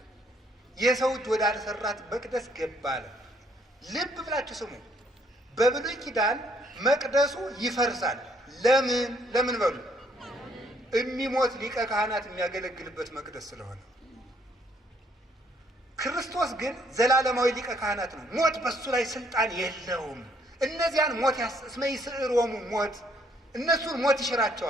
የሰው እጅ ወዳልሰራት መቅደስ ገባ አለ። ልብ ብላችሁ ስሙ። በብሉይ ኪዳን መቅደሱ ይፈርሳል። ለምን በሉ? የሚሞት ሊቀ ካህናት የሚያገለግልበት መቅደስ ስለሆነ። ክርስቶስ ግን ዘላለማዊ ሊቀ ካህናት ነው። ሞት በሱ ላይ ስልጣን የለውም። እነዚያን ሞት እስመ ይስዕሮሙ ሞት፣ እነሱን ሞት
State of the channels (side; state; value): both; normal; correlation 0.67